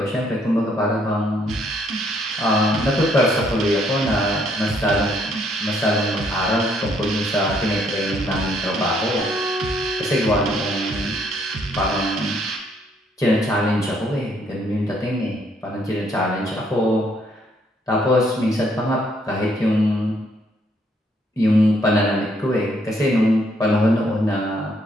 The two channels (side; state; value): both; normal; correlation 0.69